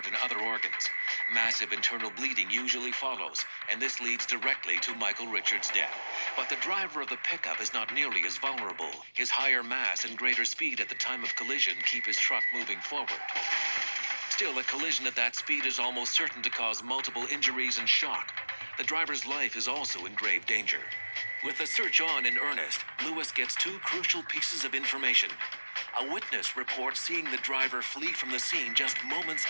and other organs. Massive internal bleeding usually follows, and this leads directly to Michael Richards' death. But the driver of the pickup is not nearly as vulnerable. His higher mass and greater speed at the time of collision keep his truck moving forward. Still, a collision at that speed is almost certain to cause multiple injuries and shock. The driver's life is also in grave danger. With the search on in earnest, Lewis gets two crucial pieces of information. A witness reports seeing the driver flee from the scene just moments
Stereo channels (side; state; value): both; inverted; correlation -1.00